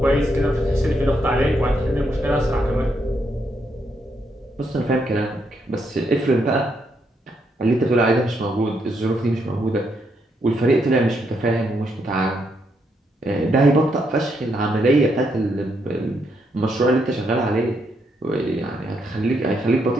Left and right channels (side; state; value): both; normal; correlation 0.77